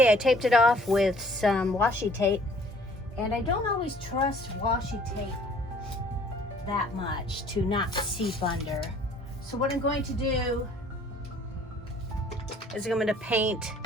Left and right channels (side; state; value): both; normal; correlation 0.56